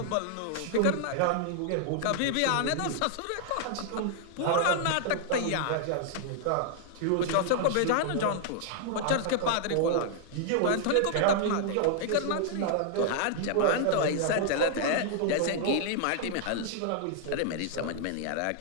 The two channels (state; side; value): different; both; correlation -0.01